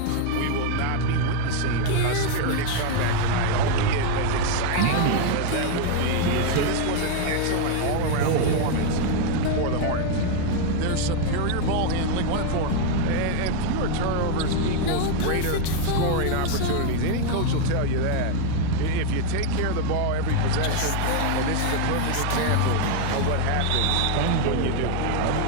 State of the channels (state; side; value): different; both; correlation 0.01